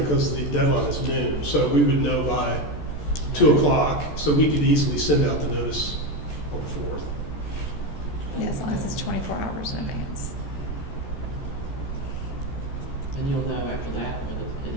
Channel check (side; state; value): right; late; 14 ms